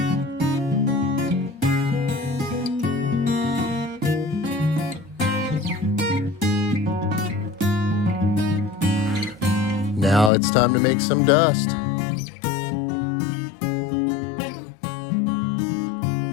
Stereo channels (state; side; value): drops out; right; at 10.3 s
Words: Now it's time to make some dust.